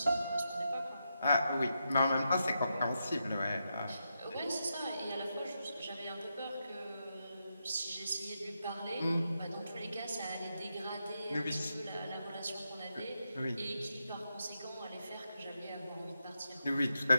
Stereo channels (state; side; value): inverted; both; correlation -0.85